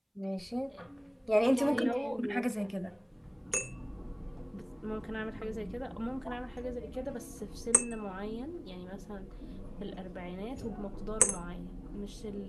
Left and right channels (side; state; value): both; identical; correlation 1.00